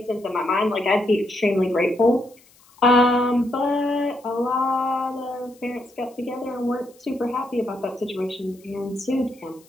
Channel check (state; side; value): noise; left; hiss, 29 dB below the sound